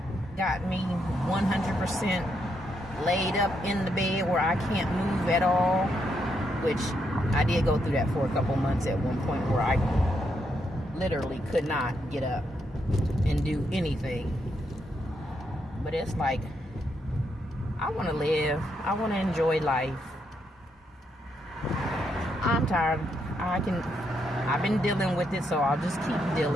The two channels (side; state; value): both; normal; correlation 0.79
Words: got me 100% laid up in the bed where I can't move at all, which I did go through that for a couple months at one point where I literally could not get up and do anything. But it's like, I want to live. I want to enjoy life. I'm tired. I've been dealing with it, so I'll just keep